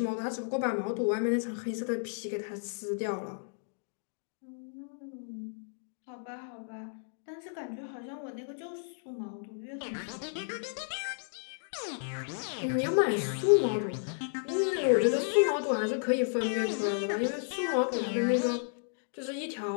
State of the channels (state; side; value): silent; right; digital silence